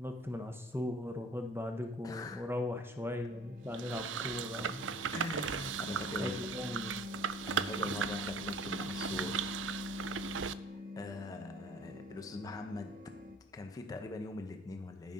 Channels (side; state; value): both; normal; correlation 0.51